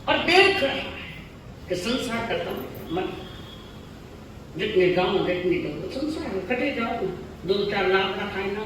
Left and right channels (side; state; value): both; identical; correlation 1.00